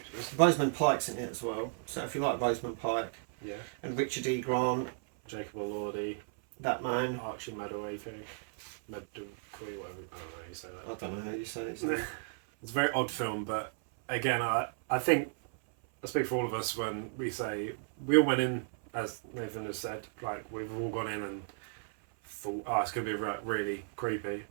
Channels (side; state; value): left; silent; 55 dB below the other